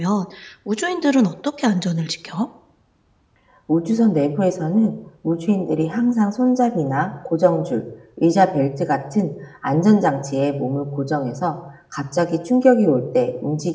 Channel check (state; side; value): identical; both; correlation 1.00